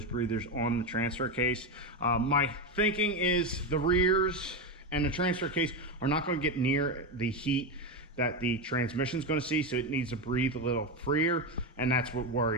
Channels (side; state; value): both; normal; correlation 0.12